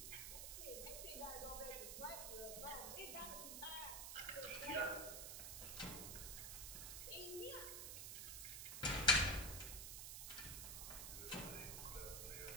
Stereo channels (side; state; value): right; noise; hiss, 5 dB below the sound